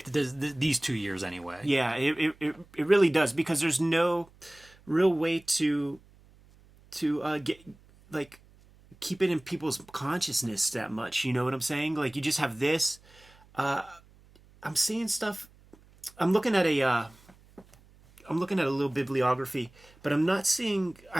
does these 2 years anyway. Yeah, it really does, because there's no real way to get like keep it in people's consciousness that much. You know what I'm saying? Like, you just have this. I'm seeing stuff. I'm looking at a little bibliography, but I'm not seeing.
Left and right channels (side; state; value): right; noise; hum, 27 dB below the sound